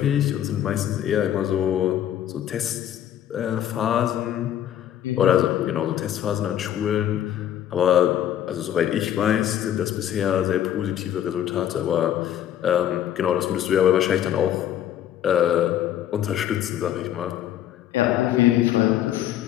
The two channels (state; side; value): quieter; right; 11.1 dB